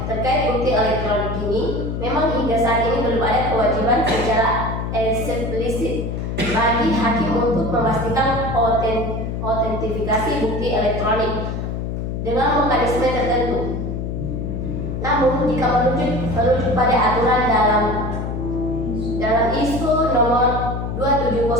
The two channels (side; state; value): left; noise; hum, 3 dB below the sound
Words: bukti elektronik ini, memang hingga saat ini belum ada kewajiban secara eksplisit bagi hakim untuk memastikan autentifikasi bukti elektronik dengan mekanisme tertentu. Namun, jika merujuk pada aturan dalam ISO nomor